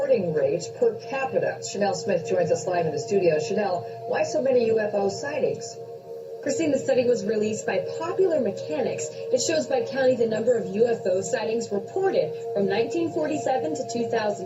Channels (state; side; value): identical; both; correlation 1.00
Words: rates per capita. Chanel Smith joins us live in the studio. Chanel, why so many UFO sightings? Christine, the study was released by Popular Mechanics. It shows by county the number of UFO sightings reported from 1947 to